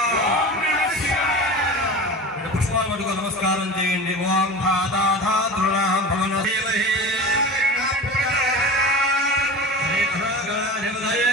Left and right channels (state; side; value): normal; both; correlation 0.33